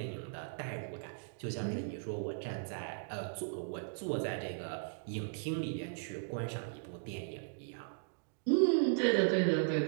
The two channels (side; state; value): left; silent; digital silence